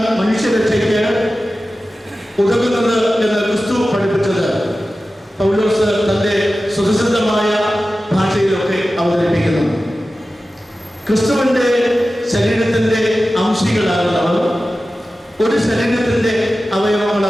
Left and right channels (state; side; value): normal; both; correlation 0.94